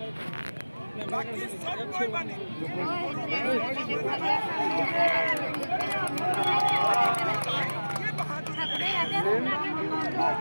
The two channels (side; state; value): both; inverted; correlation -1.00